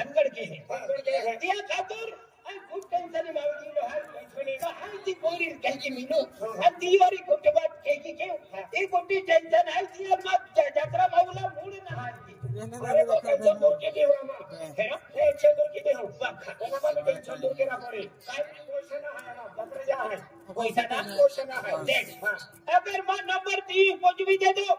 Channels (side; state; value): both; identical; correlation 1.00